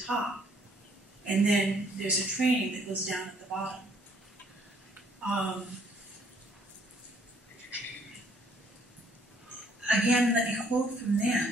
top. And then there's a training that goes down at the bottom. Again, let me quote from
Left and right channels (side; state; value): both; normal; correlation 0.64